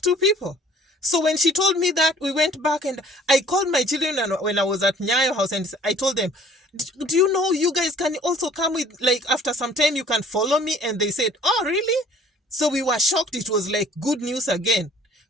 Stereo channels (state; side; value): normal; both; correlation 0.53